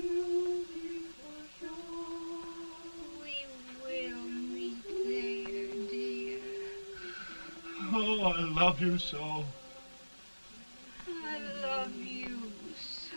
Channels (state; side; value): inverted; both; correlation -1.00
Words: shore. Oh, I love you so. I love you so.